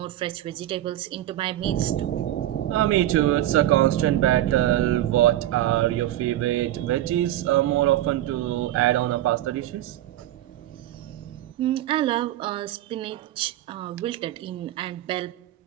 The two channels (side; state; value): left; quieter; 13.7 dB